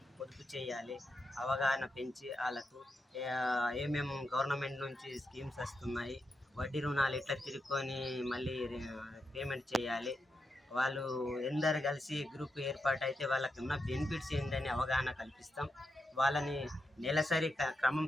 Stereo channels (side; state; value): both; normal; correlation 0.86